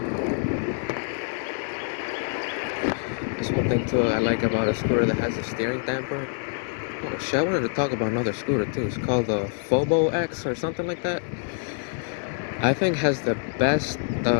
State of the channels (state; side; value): silent; right; 61 dB below the other